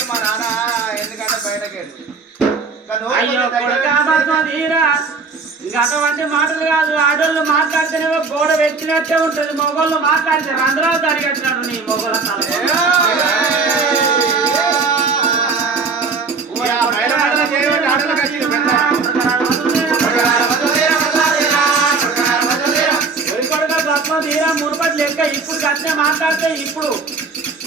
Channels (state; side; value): quieter; left; 4.6 dB